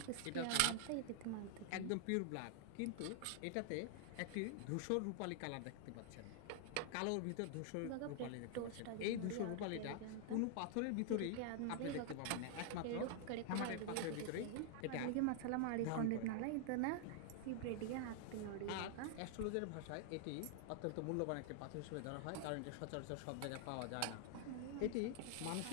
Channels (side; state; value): both; different; correlation 0.00